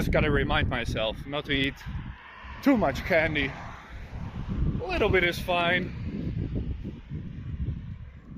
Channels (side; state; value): both; identical; correlation 1.00